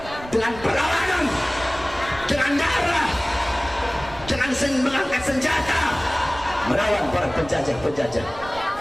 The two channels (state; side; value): noise; right; rumble, 16 dB below the sound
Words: dengan perlawanan, dengan darah, dengan mengangkat senjata melawan para penjajah-penjajah.